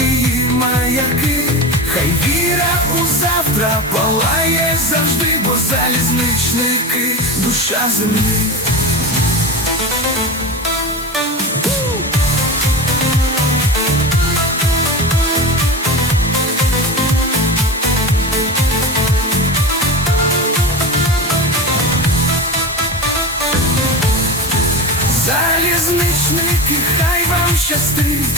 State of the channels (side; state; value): both; normal; correlation 0.27